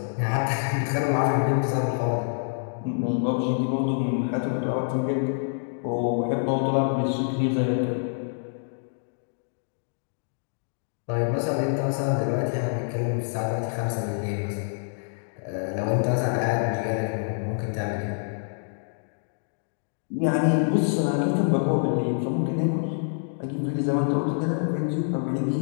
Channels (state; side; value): silent; right; digital silence